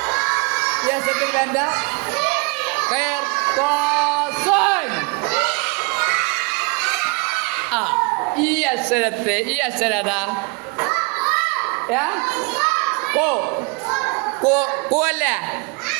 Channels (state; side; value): quieter; left; 30.4 dB